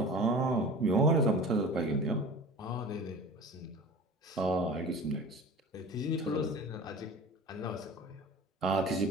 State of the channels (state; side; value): normal; both; correlation 0.38